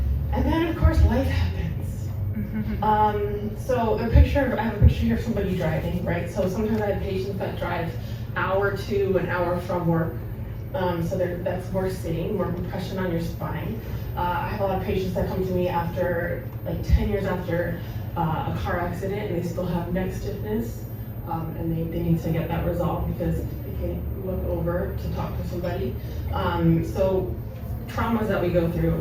And then, of course, life happens. So I have a picture here of somebody driving, right? So sometimes I have patients that drive hour to an hour from work. So that's more sitting, more compression on your spine. I have a lot of patients that come to me after, like 10 years after a car accident, and they still have neck stiffness, and they need to get that resolved because they can't look over to talk to somebody. So traumas that we go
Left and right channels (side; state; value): both; identical; correlation 1.00